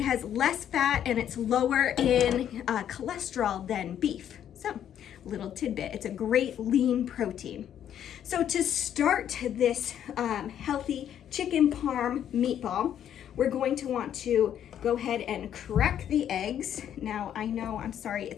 less fat and it's lower in cholesterol than beef. So, little tidbit, it's a great lean protein. So to start this healthy chicken parm meatball, we're going to want to go ahead and crack the eggs. Now I know, I'm sorry,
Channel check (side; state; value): right; quieter; 10.0 dB